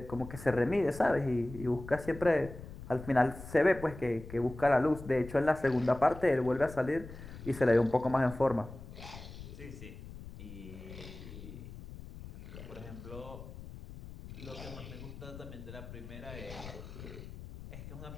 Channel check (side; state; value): left; noise; rumble, 13 dB below the sound